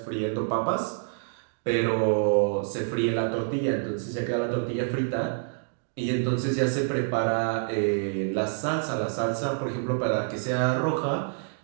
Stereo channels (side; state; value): left; silent; digital silence